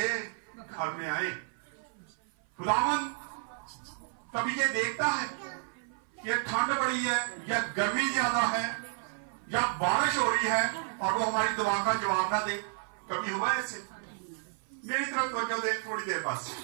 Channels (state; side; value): silent; left; 55 dB below the other